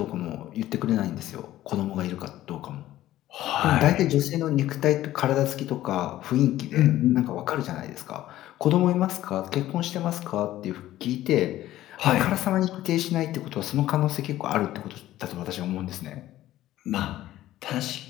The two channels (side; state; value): right; quieter; 14.4 dB